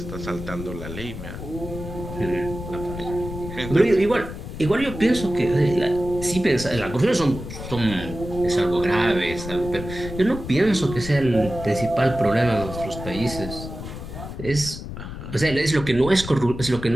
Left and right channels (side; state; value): left; noise; rumble, 9 dB below the sound